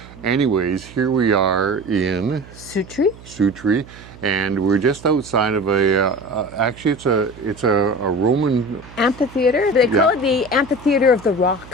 Anyways, here we are in Sutri, and we're just outside of actually it's a Roman amphitheater. They call it the Amphitheater of the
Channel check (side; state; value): right; noise; hum, 19 dB below the sound